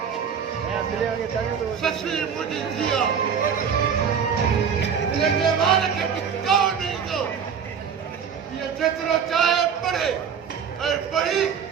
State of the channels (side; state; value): left; quieter; 7.1 dB